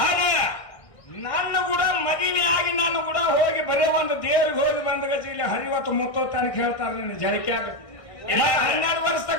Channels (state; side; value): late; right; 1.6 ms